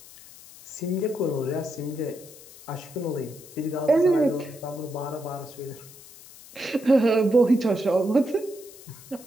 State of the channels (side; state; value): left; noise; hiss, 19 dB below the sound